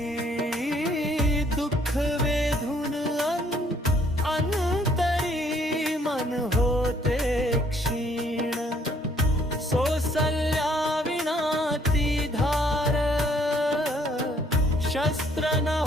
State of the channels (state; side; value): normal; both; correlation 0.64